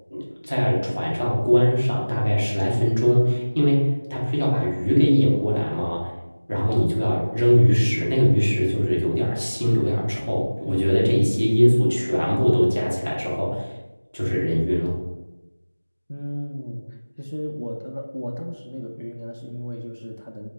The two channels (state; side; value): inverted; both; correlation -1.00